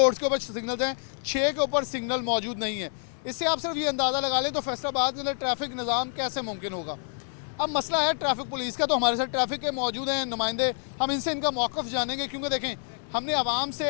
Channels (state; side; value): silent; right; 60 dB below the other